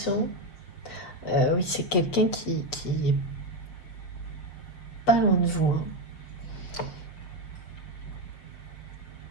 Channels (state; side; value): late; right; 6.5 ms